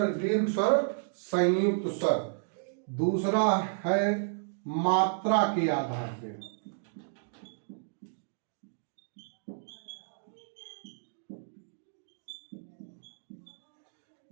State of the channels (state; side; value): silent; left; digital silence